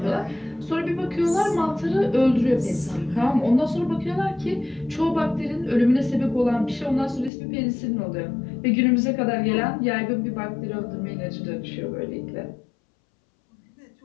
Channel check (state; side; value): drops out; right; at 7.3 s